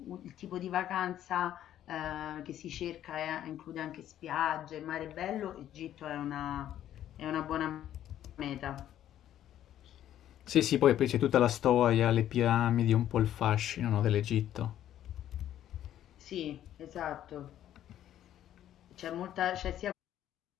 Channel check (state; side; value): quieter; right; 11.6 dB